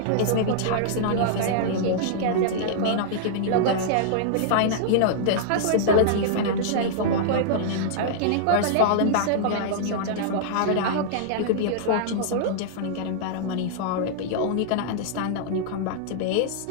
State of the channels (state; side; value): different; both; correlation -0.01